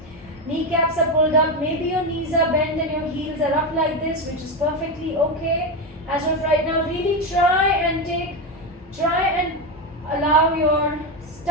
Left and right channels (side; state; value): both; normal; correlation 0.12